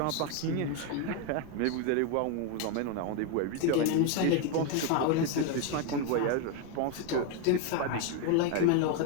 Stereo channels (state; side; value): different; both; correlation 0.01